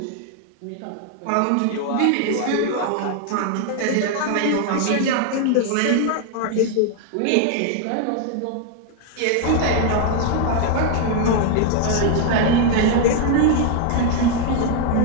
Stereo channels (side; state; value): both; different; correlation 0.00